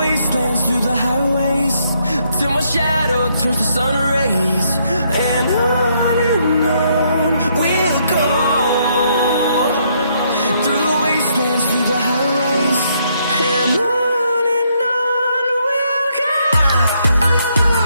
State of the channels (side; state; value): both; inverted; correlation -0.73